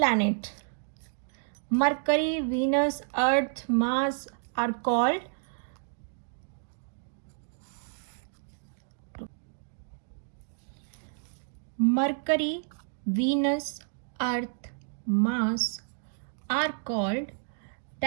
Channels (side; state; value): left; silent; digital silence